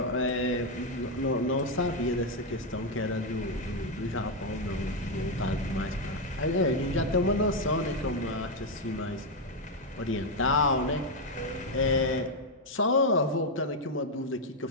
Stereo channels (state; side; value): normal; both; correlation 0.04